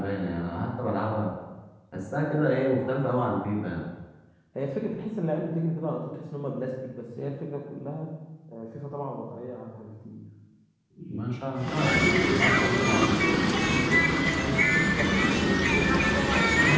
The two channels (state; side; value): identical; both; correlation 1.00